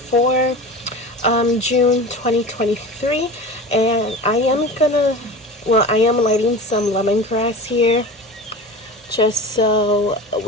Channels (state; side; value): normal; both; correlation 0.33